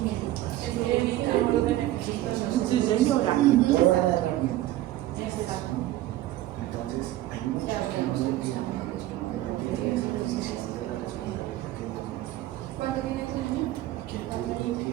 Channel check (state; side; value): quieter; left; 15.1 dB